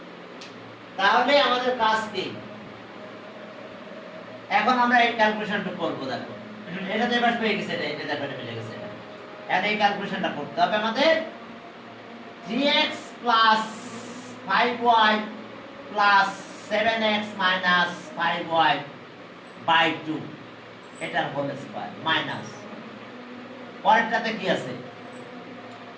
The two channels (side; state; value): both; identical; correlation 1.00